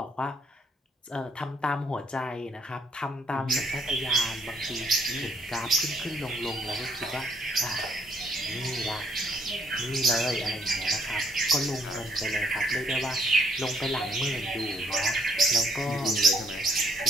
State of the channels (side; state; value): both; normal; correlation 0.69